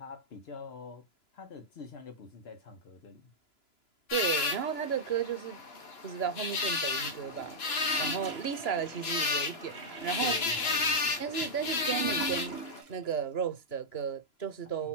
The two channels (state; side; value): late; right; 2.9 ms